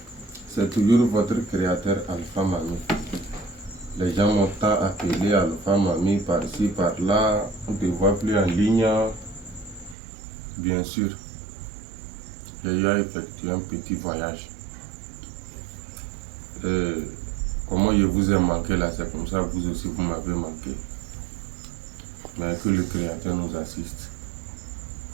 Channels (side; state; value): left; drops out; at 10.0 s